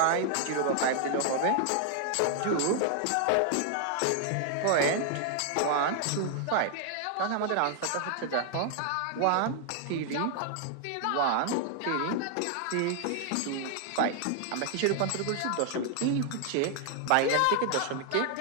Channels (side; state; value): both; different; correlation 0.00